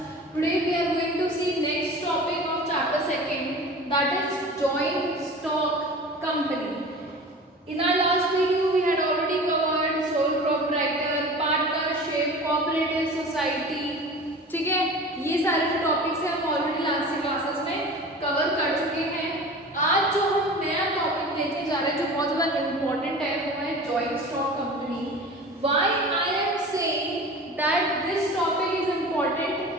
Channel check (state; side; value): normal; both; correlation 0.37